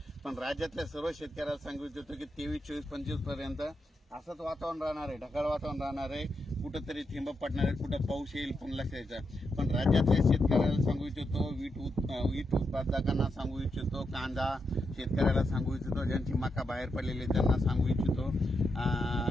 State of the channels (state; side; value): normal; both; correlation 0.84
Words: पण राज्यातल्या सर्व शेतकऱ्याला सांगू इच्छितो की 23, 24, 25 पर्यंत असंच वातावरण राहणार आहे, ढगाळ वातावरण राहणार आहे. कुठंतरी थेंब पडणार आहे, कुठं पाऊस येईल पण लक्षात यायचा. पण राज्यातल्या शेतकऱ्याला सांगू इच्छितो, वीट उत्पादकांना सांगू इच्छितो, कांदा शेतकऱ्याला सांगू इच्छितो, ज्यांची मका बाहेर पडलेली त्यांना सांगू इच्छितो,